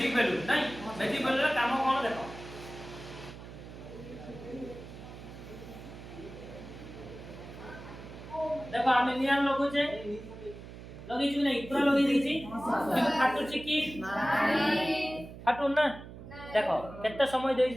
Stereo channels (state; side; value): noise; right; hum, 14 dB below the sound